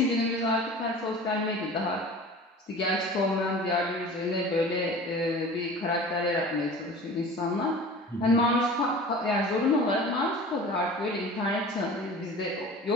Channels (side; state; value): both; normal; correlation 0.40